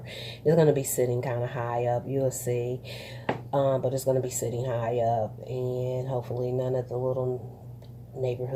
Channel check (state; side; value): identical; both; correlation 1.00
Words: It's going to be sitting kind of high up. You'll see. But it's going to be sitting high up. And hopefully none of the little